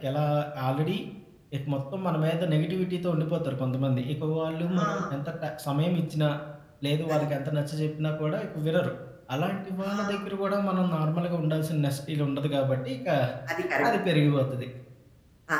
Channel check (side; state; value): both; identical; correlation 1.00